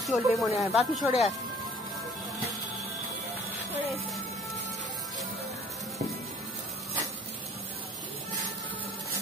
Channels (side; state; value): both; normal; correlation 0.53